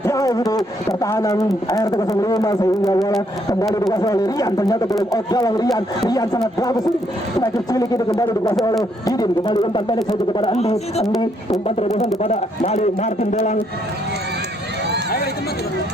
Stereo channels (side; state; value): both; normal; correlation 0.72